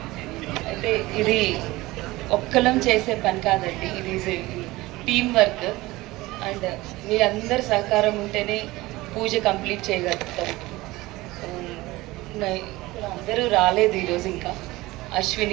అయితే ఇది ఒక్కలం చేసే పని కాదండి, ఇది టీమ్ వర్క్. అండ్ మీ అందరి సహకారం ఉంటేనే పూజ కంప్లీట్ చేయగలుగుతాం. అందరూ రాలేదు ఈరోజు. ఇంకా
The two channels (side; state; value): left; quieter; 19.5 dB